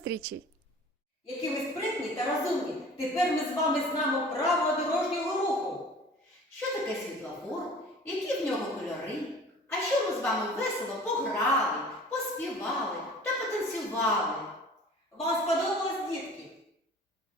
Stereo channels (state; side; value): normal; both; correlation 0.45